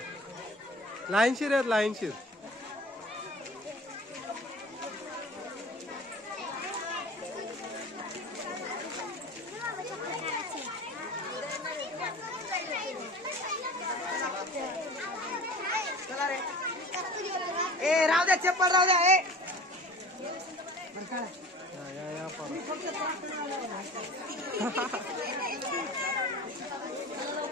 लाईनशीर आहेत लाईनशीर. चला रे ए राहू द्या चप्पल राहू द्या ए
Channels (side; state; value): both; normal; correlation 0.39